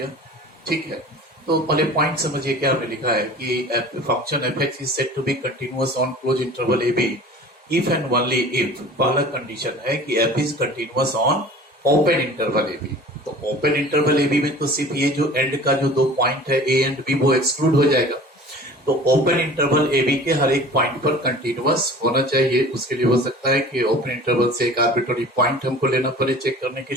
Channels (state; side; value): normal; both; correlation 0.43